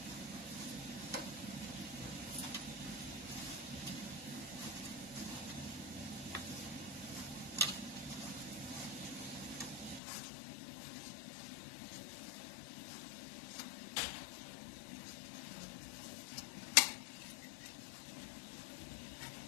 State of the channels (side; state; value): right; drops out; at 10.0 s